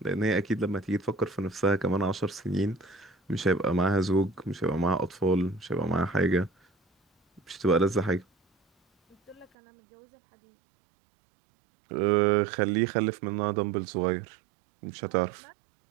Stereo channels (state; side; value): drops out; left; at 9.5 s